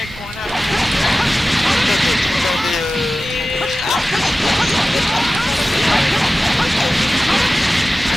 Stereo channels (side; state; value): both; normal; correlation 0.95